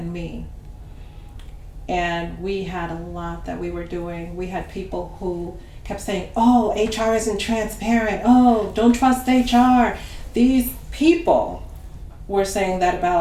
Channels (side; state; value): both; identical; correlation 1.00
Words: me. And we had a lot that we were doing. We had people who kept saying, oh, HR isn't transparent. Oh, don't trust HR. These people were saying that